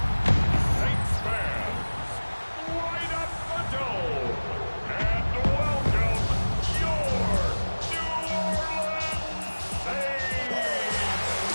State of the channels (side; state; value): both; inverted; correlation -1.00